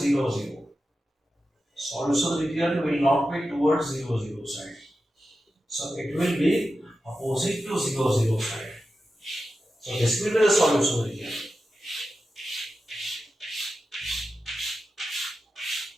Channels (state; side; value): normal; both; correlation 0.91